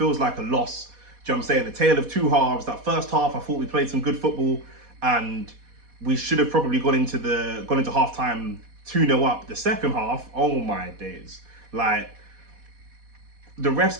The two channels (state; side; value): late; left; 4.2 ms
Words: like a loss. Do you know what I'm saying? The tale of two halves. That first half, I thought we played some good football and we should have probably gone into half time 2-0 up. The second half, oh my days. Like, the ref's